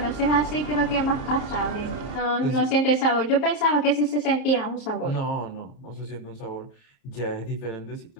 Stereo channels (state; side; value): late; right; 30 ms